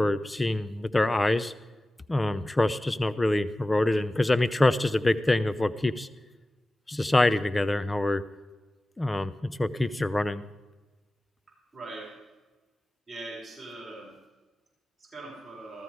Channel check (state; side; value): normal; both; correlation 0.96